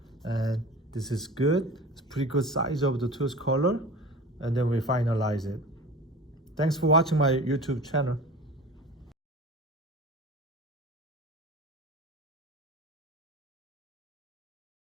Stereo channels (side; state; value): both; normal; correlation 0.36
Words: And this is good. It's pretty good size of the tooth color. And then we finalize it. Thanks for watching my YouTube channel.